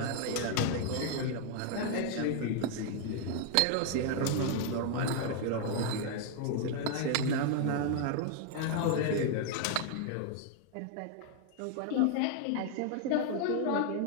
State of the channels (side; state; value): both; different; correlation 0.00